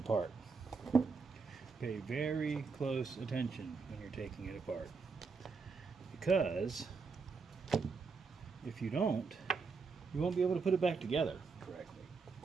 Pay very close attention when you're taking it apart. Because if you don't, you won't be able to put it back together correctly.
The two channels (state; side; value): quieter; left; 4.8 dB